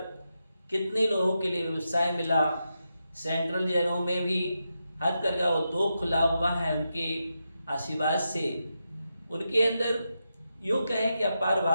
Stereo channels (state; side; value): inverted; both; correlation -0.87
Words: कितने लोगों के लिए व्यवसाय मिला। सेंट्रल जेलों में भी हथकरघा उद्योग खुला हुआ है उनके आशीर्वाद से। उनके अंदर यूँ कहें कि अपार